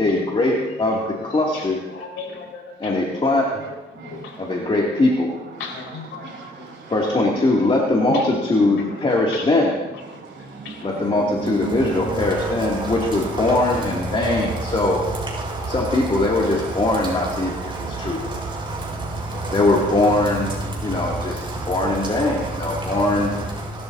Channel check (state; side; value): normal; both; correlation 0.60